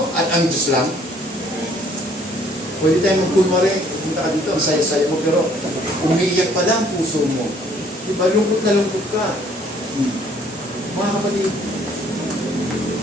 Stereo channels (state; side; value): normal; both; correlation 0.61